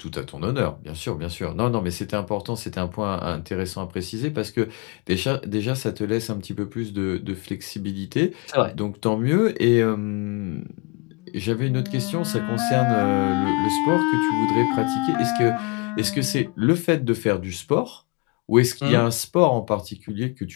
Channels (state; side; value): quieter; right; 31.0 dB